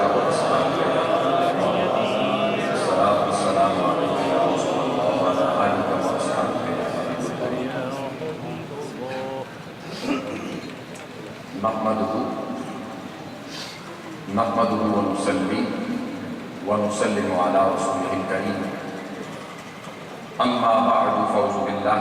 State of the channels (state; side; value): identical; both; correlation 1.00